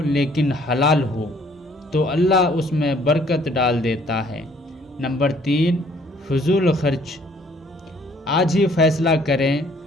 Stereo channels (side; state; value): both; normal; correlation 0.61